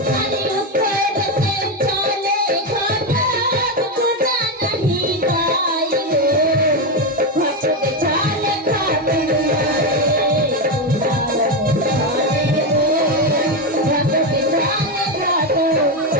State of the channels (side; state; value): both; normal; correlation 0.09